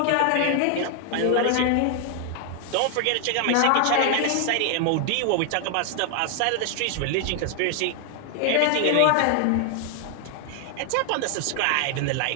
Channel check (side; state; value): both; different; correlation 0.00